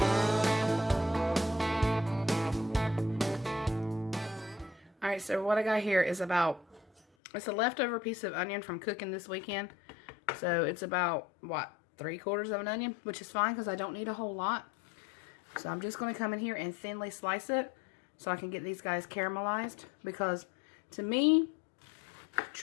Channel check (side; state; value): right; drops out; at 7.0 s